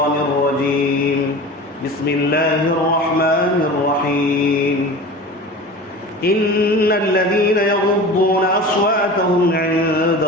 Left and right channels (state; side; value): normal; both; correlation 0.35